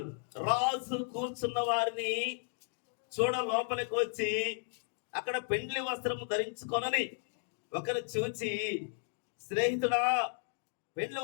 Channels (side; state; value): right; silent; 55 dB below the other